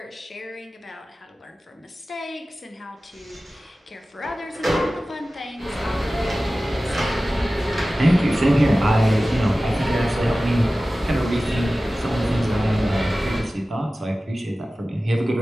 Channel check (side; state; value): both; normal; correlation 0.96